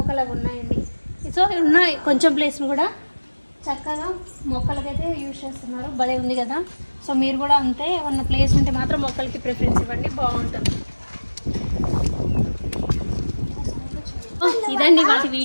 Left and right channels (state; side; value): inverted; both; correlation -1.00